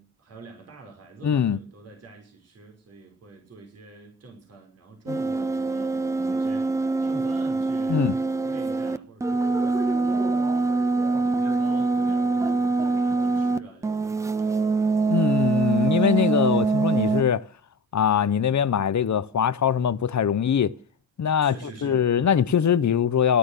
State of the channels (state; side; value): normal; both; correlation 0.42